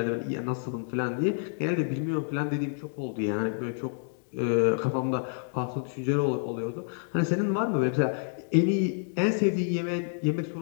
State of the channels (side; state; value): right; silent; 59 dB below the other